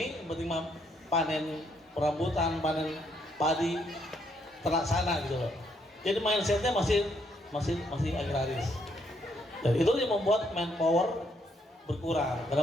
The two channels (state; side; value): normal; both; correlation 0.72